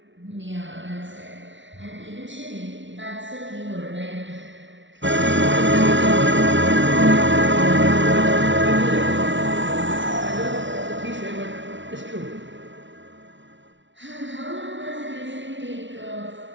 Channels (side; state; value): left; late; 0.55 ms